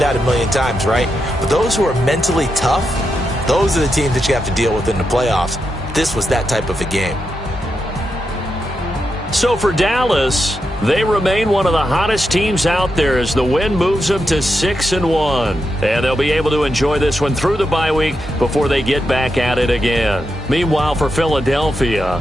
a million times, right? But those who are mentally tough, those are the teams that you have to deal with in the playoffs. This was that type of a game. So for Dallas, they remain one of the hottest teams out there as the win moves them to 6-1. And they'll be able to enjoy this one through the bye week before they get back at it again. Meanwhile, for Philadelphia,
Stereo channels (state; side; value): normal; both; correlation 0.85